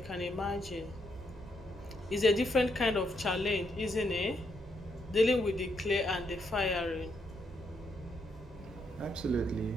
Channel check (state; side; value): normal; both; correlation 0.77